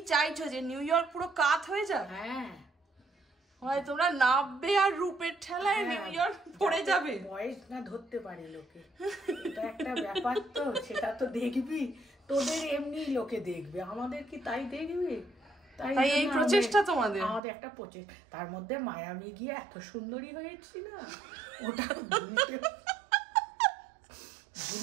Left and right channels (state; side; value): drops out; left; at 17.4 s